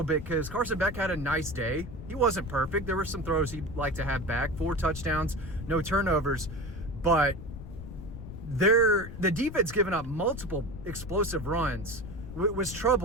bit because Carson Beck had a nice day. He wasn't perfect. There were some throws he'd like to have back. 4 touchdowns, no turnovers. But the defense giving up multiple explosive runs was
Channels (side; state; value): left; noise; rumble, 11 dB below the sound